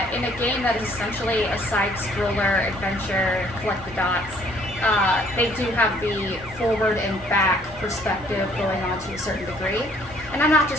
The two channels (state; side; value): normal; both; correlation 0.61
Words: in a game that is essentially a side-scroller adventure, collect the dots, they do have the forward and back perspective going on to a certain degree. And I'm not